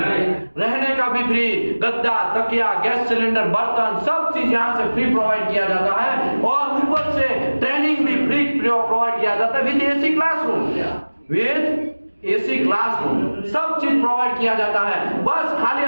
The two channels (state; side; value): inverted; both; correlation -1.00